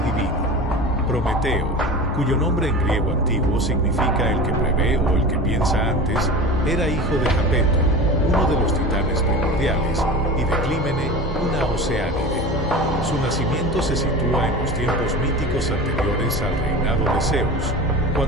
divino. Prometeo, cuyo nombre en griego antiguo significa el que prevé o el que piensa antes, era hijo de Japeto, uno de los titanes primordiales, y de Clímene, una oceánide. Su nacimiento se sitúa en los tiempos míticos anteriores al reinado de Zeus,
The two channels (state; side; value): normal; both; correlation 0.32